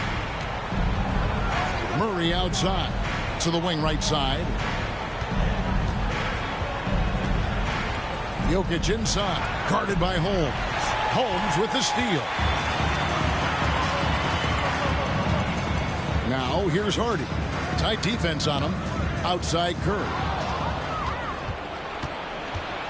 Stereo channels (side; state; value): both; identical; correlation 1.00